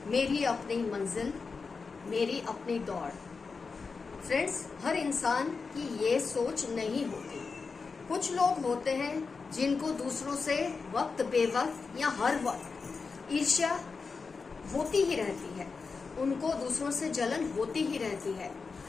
मेरी अपनी मंजिल, मेरी अपनी दौड़। फ्रेंड्स, हर इंसान की ये सोच नहीं होती। कुछ लोग होते हैं जिनको दूसरों से वक्त बेवक्त या हर वक्त ईर्ष्या होती ही रहती है, उनको दूसरों से जलन होती ही रहती है।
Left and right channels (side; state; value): right; quieter; 4.7 dB